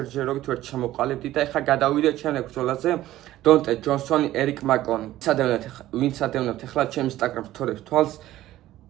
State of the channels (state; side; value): quieter; left; 14.6 dB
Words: ვერ ჩამოყალიბდი და ეხლა გადავიდეთ შემდეგ ბრძოლაზე. დონტე ჯონსონი, ერიკ მაკონი. ვინც ადევნებთ ეხლა ჩემ Instagram story-ს თვალს